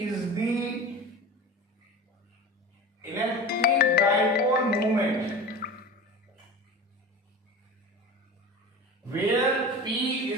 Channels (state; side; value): normal; both; correlation 0.33